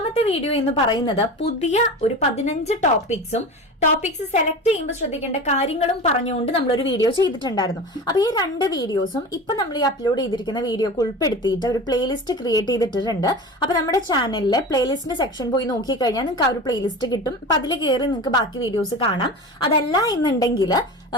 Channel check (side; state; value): both; normal; correlation 0.31